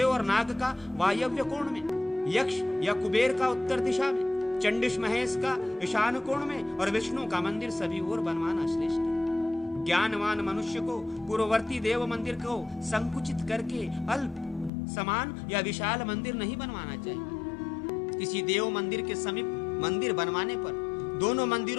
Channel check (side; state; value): right; drops out; at 14.7 s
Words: और नाग का वायव्य कोण में, यक्ष या कुबेर का उत्तर दिशा में, चंडिश महेश का ईशान कोण में और विष्णु का मंदिर सभी ओर बनवाना श्रेष्ठ है। ज्ञानवान मनुष्य को पूर्ववर्ती देव मंदिर को संकुचित करके अल्प, समान या विशाल मंदिर नहीं बनवाना चाहिए। किसी देव मंदिर के समीप मंदिर बनवाने पर दोनों